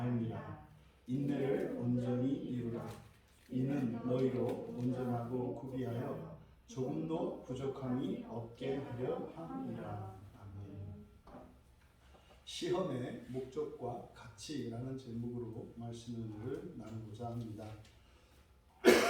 알미라. 인내를 온전히 이루라. 이는 너희로 온전하고 구비하여 조금도 부족함이 없게 하려 함이라. 아멘. 시험의 목적과 가치라는 제목으로 말씀을 나누고자 합니다.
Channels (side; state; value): both; identical; correlation 1.00